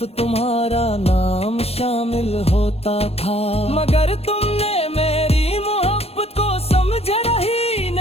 तुम्हारा नाम शामिल होता था। मगर तुमने मेरी मोहब्बत को समझा ही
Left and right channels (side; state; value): right; late; 0.29 ms